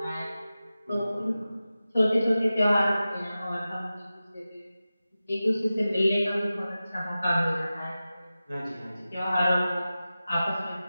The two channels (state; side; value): inverted; both; correlation -0.94